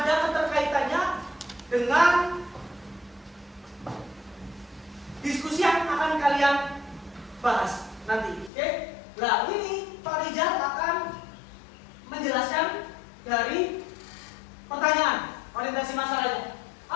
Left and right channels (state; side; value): drops out; right; at 8.5 s